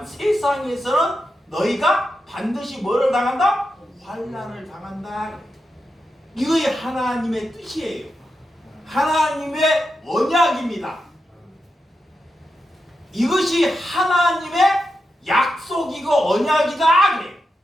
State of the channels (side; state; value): both; normal; correlation 0.88